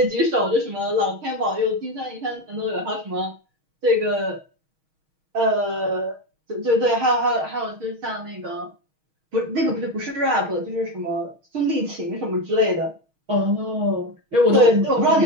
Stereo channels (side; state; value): left; late; 6.3 ms